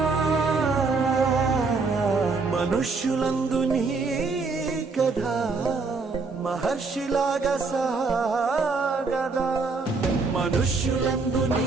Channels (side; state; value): left; quieter; 4.2 dB